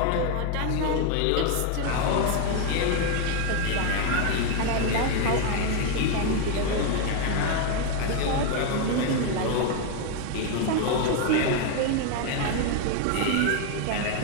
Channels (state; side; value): different; both; correlation 0.01